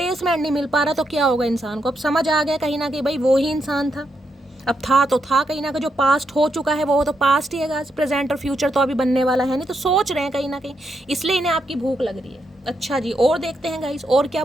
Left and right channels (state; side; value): normal; both; correlation 0.81